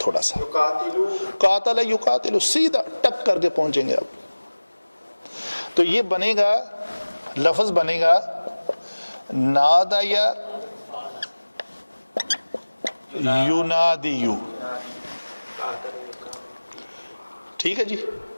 سا. قاتل یقاتل، سیدھا ٹک کر کے پہنچیں گے آپ. تو یہ بنے گا، لفظ بنے گا نادا یا یونادیو. ٹھیک ہے جی.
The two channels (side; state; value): both; inverted; correlation -1.00